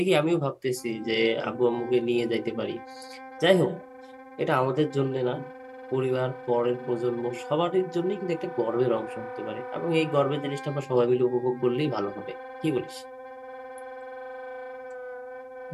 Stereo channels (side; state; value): both; identical; correlation 1.00